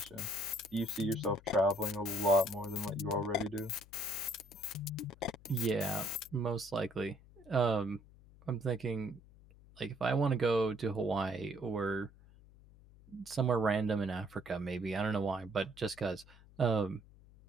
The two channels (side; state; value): left; noise; hum, 23 dB below the sound